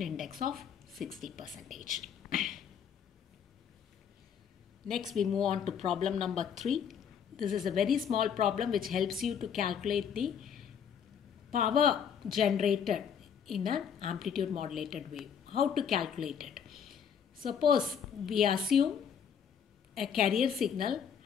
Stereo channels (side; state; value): right; quieter; 7.8 dB